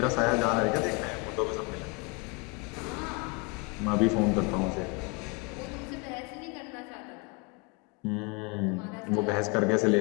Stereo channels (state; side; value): quieter; right; 27.2 dB